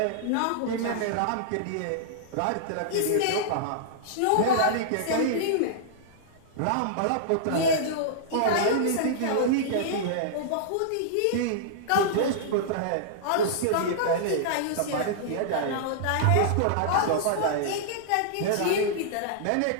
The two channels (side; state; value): both; different; correlation -0.02